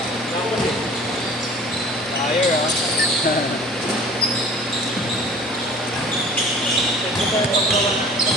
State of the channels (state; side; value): normal; both; correlation 0.47